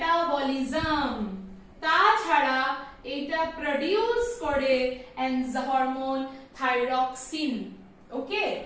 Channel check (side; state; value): both; identical; correlation 1.00